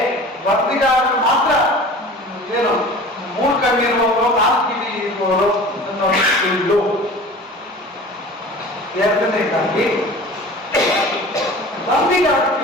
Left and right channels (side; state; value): both; normal; correlation 0.41